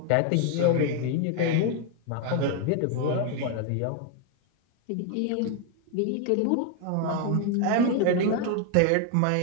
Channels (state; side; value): different; both; correlation 0.01